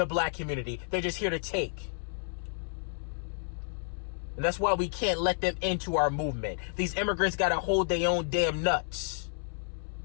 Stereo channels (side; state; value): right; silent; 57 dB below the other